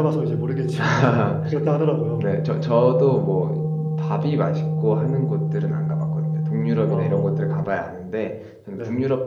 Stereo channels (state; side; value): identical; both; correlation 1.00